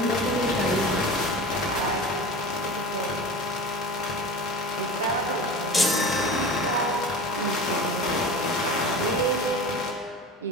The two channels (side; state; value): both; normal; correlation 0.33